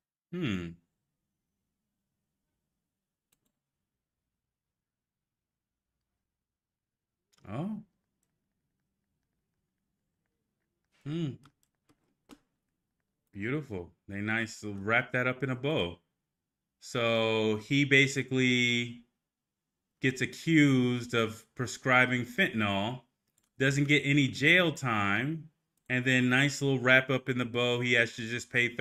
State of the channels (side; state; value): both; identical; correlation 1.00